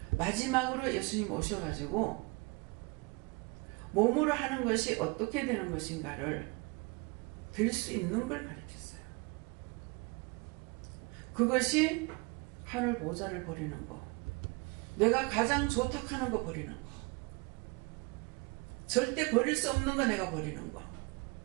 마지막으로 예수님 오셔가지고 몸으로 하는 것이 어떻게 되는 것인가를 들 수 있는 걸 가르쳤어요. 그것이 하늘 보좌를 버리는 거, 내가 가장 좋다하는 거 버리는 거, 절대 버릴 수 없는 거 내가 버리는 거.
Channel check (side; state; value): left; quieter; 28.3 dB